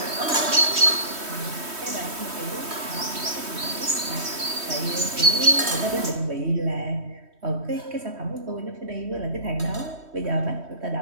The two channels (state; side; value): late; left; 3.1 ms